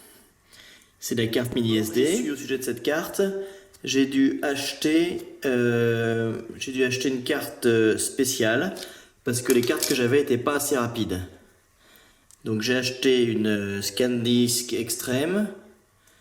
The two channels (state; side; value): identical; both; correlation 1.00